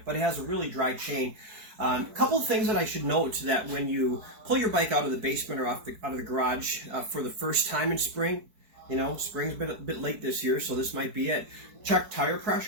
but it has a really dry chain. A couple of things that I should note that when you pull your bike out of the basement or out of the garage for the first time in spring, spring's been a bit late this year, so this might be it. Check tire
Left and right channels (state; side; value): late; left; 4.6 ms